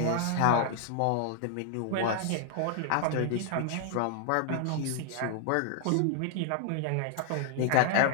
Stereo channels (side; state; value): both; different; correlation 0.00